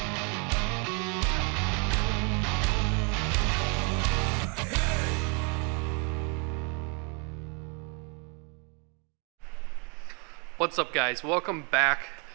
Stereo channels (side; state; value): left; quieter; 34.9 dB